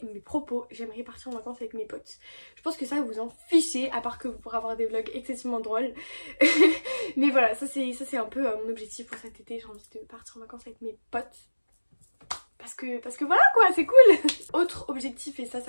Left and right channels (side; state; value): both; inverted; correlation -1.00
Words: mes propos, j'aimerais partir en vacances avec mes potes. Je pense que ça vous en fichez, à part que vous pourrez avoir des vlogs excessivement drôles. Mais voilà, ça c'est un peu mon objectif pour cet été. J'ai envie de partir en vacances avec mes potes. Parce que voilà quoi, c'est cool. Autre objectif, et ça